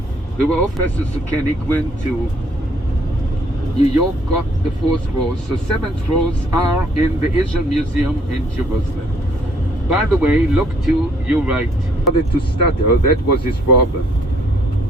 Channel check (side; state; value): both; normal; correlation 0.64